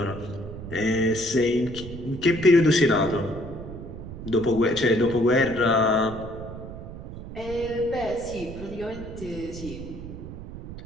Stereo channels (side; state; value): right; noise; rumble, 11 dB below the sound